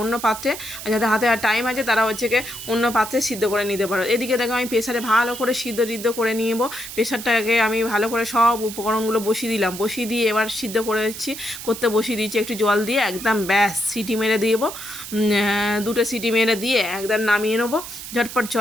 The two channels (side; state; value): right; noise; hiss, 11 dB below the sound